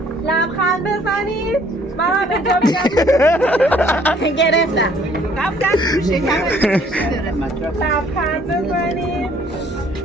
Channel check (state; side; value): normal; both; correlation 0.60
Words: لبخند بزنید من اینجا میگم گرفتم رفتن تو شکم لبخند بزنید